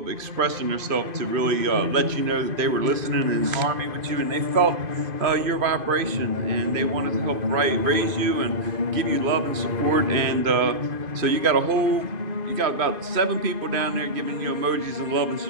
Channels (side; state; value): left; late; 2.5 ms